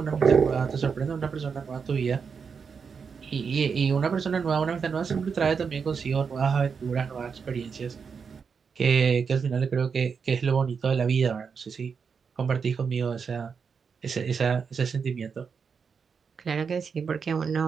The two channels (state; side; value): quieter; left; 6.0 dB